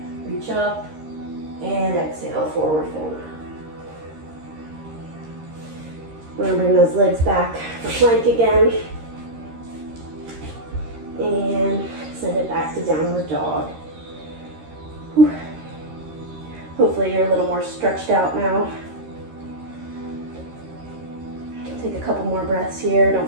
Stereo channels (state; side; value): late; left; 13 ms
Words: reach up, and exhale, forward fold. We're going to bring those legs back for plank again. And send it back to downward dog. Whew. Hopefully you're a little more stretched out now. Take a couple more breaths here.